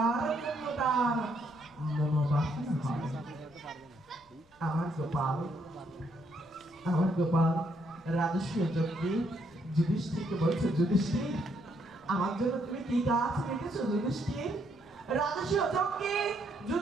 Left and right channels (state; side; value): normal; both; correlation 0.73